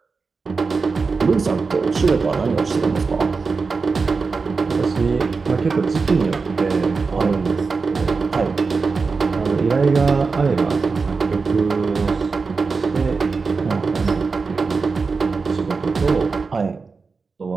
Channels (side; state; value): left; quieter; 4.6 dB